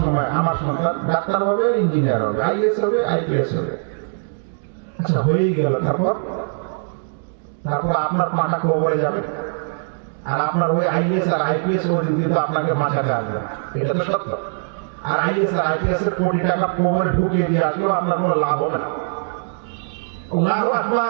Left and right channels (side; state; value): left; silent; digital silence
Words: আমার সন্তান ডাক্তার হবে, ইঞ্জিনিয়ার হবে, আইএস হবে, আইপিএস হবে। আচ্ছা হয়েই গেল, তারপর আপনার পাটা কবরে যাবে, আর আপনার ওই আইএস আর আইপিএস ওদিন কিন্তু আপনাকে বাঁচাতে আসবে। এটা তো সত্য। আর আইএস আর আইপিএস এর কোটি টাকা কবরে ঢুকিয়ে দিয়ে আসলেও আপনার কোনো লাভ হবে না। আল্লাহু